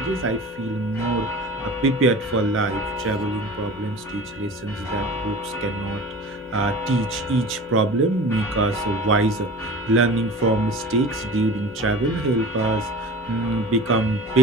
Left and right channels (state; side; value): normal; both; correlation 0.38